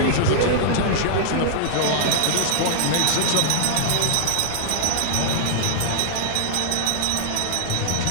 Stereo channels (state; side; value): different; both; correlation -0.01